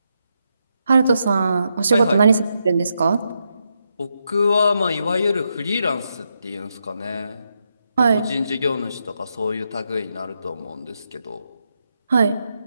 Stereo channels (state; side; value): inverted; both; correlation -0.83